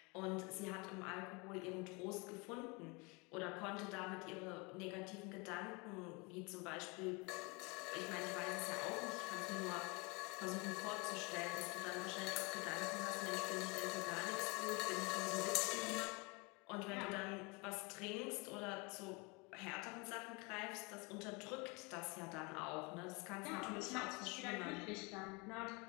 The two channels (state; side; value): quieter; right; 28.7 dB